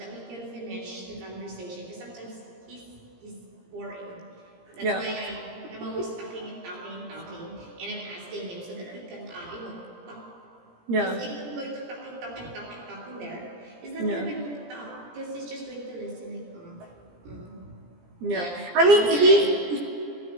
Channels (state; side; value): late; left; 17 ms